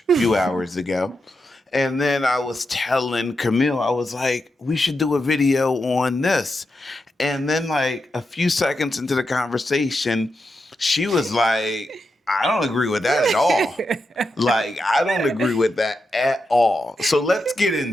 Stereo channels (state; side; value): normal; both; correlation 0.87